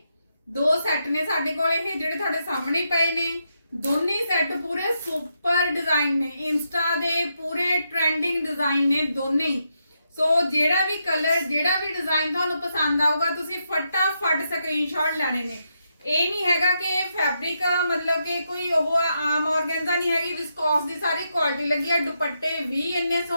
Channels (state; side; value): inverted; both; correlation -0.81